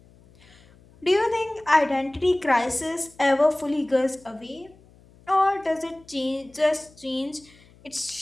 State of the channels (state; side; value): noise; left; hum, 27 dB below the sound